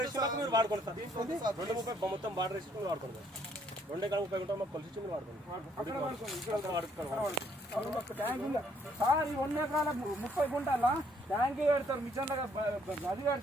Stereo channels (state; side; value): normal; both; correlation 0.67